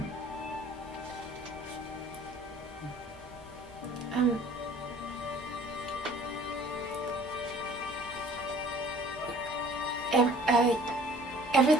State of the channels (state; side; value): normal; both; correlation 0.52